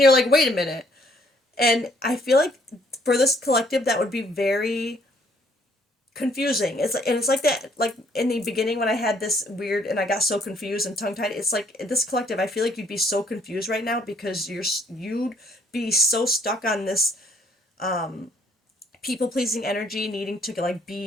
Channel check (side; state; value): both; normal; correlation 0.65